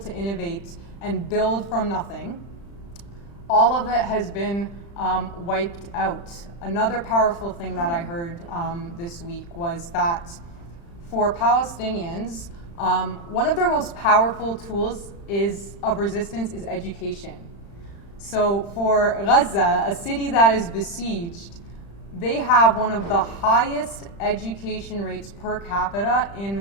innovate and build from nothing. All of it has been wiped out. Another powerful thing that I heard this week was that for Palestinians, one of their most powerful tools of resistance is education. So for Gaza, a city that is besieged, they have one of the highest education rates per capita in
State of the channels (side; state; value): right; late; 35 ms